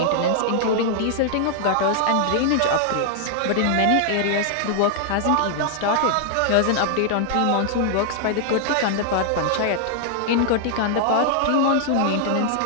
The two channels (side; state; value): both; different; correlation 0.00